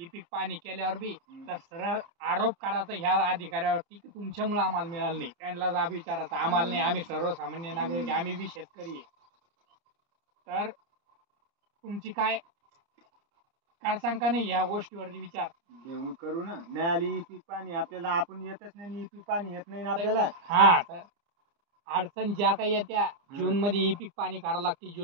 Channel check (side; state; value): left; late; 30 ms